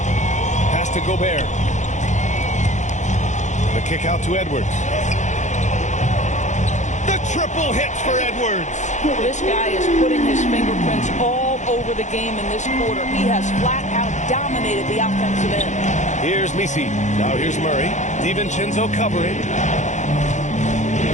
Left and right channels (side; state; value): right; late; 0.35 ms